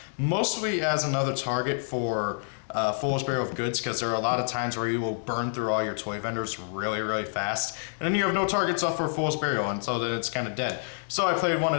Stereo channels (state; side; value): silent; right; digital silence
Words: mostly as another target for Fool's Burial of Goods, because there are a lot of times where you will burn through all your toy vendors really, really fast, and then you have no targets up for Fool's Burial, and so then it's kind of dead. So I played one